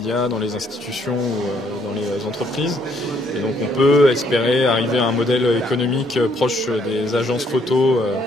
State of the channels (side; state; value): both; normal; correlation 0.68